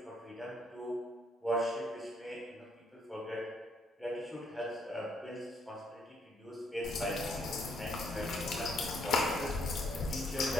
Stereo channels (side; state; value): both; normal; correlation 0.70